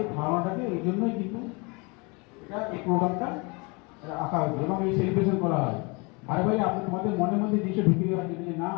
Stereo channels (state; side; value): quieter; right; 29.3 dB